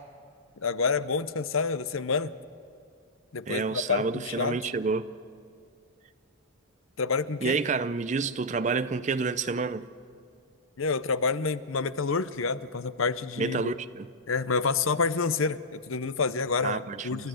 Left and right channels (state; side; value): normal; both; correlation -0.09